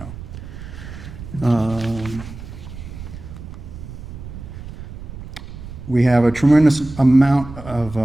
We have a tremendous amount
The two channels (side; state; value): right; noise; rumble, 12 dB below the sound